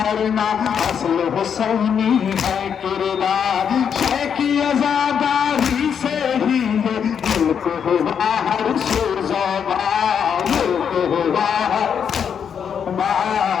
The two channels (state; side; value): quieter; right; 7.6 dB